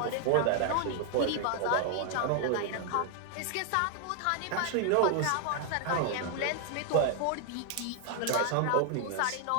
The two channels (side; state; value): both; different; correlation 0.00